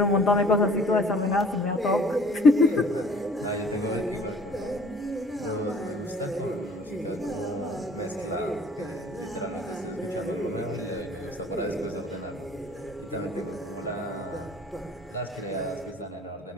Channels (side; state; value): both; normal; correlation 0.53